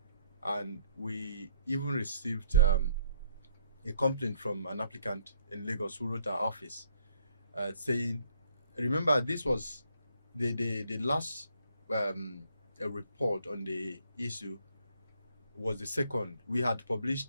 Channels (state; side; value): inverted; both; correlation -0.66